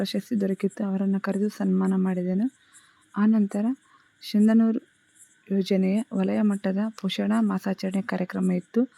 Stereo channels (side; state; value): both; identical; correlation 1.00